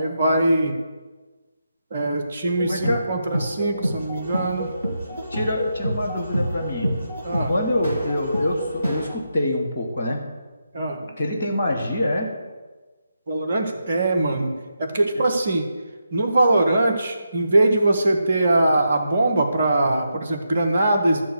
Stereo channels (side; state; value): both; inverted; correlation -0.84